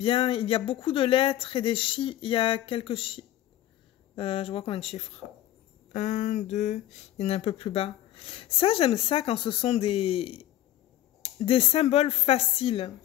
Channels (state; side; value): quieter; right; 13.3 dB